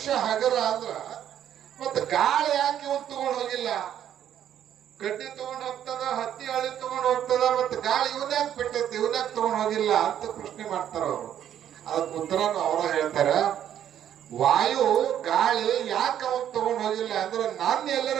ಹಗರ ಅಂದ್ರ ಮತ್ತೆ ಗಾಳಿ ಯಾಕೆ ಇವನು ತಗೊಂಡು ಹೋಗಿಲ್ಲ? ಕಡ್ಡಿ ತಗೊಂಡು ಹೋಗ್ತದ, ಹತ್ತಿ ಹಳ್ಳಿ ತಗೊಂಡು ಹೋಗ್ತದ, ಮತ್ತೆ ಗಾಳಿ ಇವನ್ಯಾಕ ಬಿಟ್ಟೈತಿ, ಇವನ್ಯಾಕ ತಗೊಂಡು ಹೋಗಿಲ್ಲ ಅಂತ ಪ್ರಶ್ನೆ ಮಾಡ್ತಾರ ಅವರು. ಅದಕ್ಕೆ ಉತ್ತರನು ಅವರ ಹೇಳ್ತಾರ, ವಾಯು ಗಾಳಿ ಯಾಕೆ ಅವನ್ ತಗೊಂಡು ಹೋಗಿಲ್ಲ ಅಂದ್ರೆ ನಾನು ಎಲ್ಲರ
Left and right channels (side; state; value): left; quieter; 10.3 dB